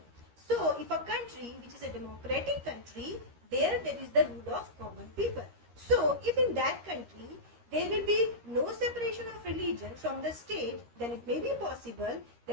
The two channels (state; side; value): late; left; 13 ms